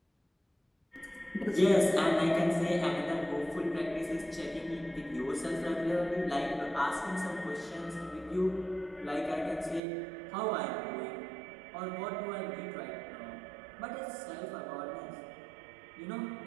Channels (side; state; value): left; drops out; at 9.8 s